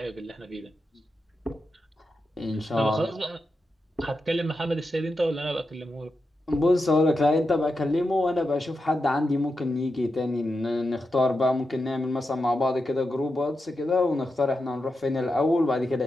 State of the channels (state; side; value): normal; both; correlation 0.88